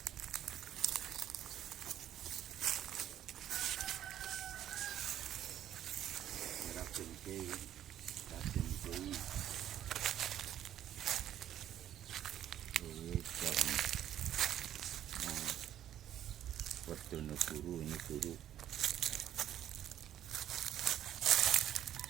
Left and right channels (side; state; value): left; quieter; 11.3 dB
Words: Raden Kiai, Raden Kiai. Werdono Guru, ini guru.